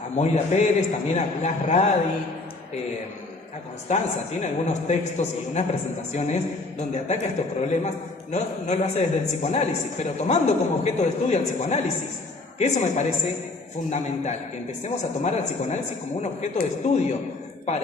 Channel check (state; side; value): quieter; right; 3.3 dB